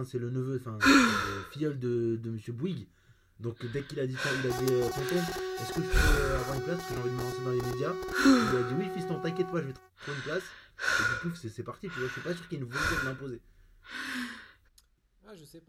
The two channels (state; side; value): identical; both; correlation 1.00